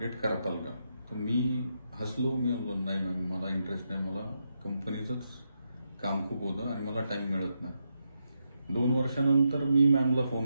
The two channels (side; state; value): both; inverted; correlation -0.83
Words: करताल का. तर मी हसलो. मी म्हणलो नाही मॅम, मला इंटरेस्ट नाही, मला कंपनीचंच काम खूप होतं आणि मला टाइम मिळत नाही. 2 वर्षानंतर मी मॅमला